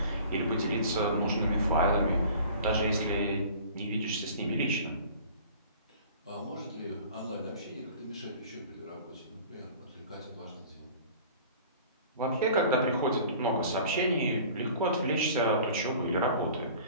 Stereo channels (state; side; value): inverted; both; correlation -0.45